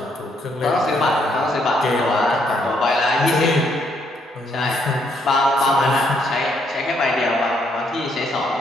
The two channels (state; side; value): normal; both; correlation 0.72